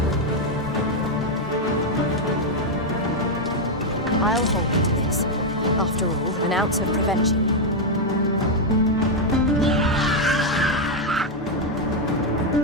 I'll hold you to this. After all, an ounce of prevention.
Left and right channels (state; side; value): normal; both; correlation 0.02